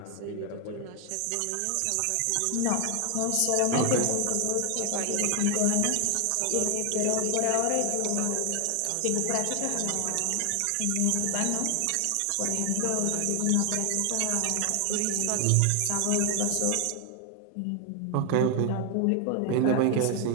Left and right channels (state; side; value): different; both; correlation 0.00